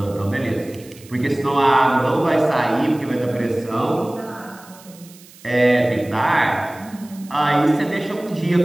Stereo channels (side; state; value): right; noise; hiss, 23 dB below the sound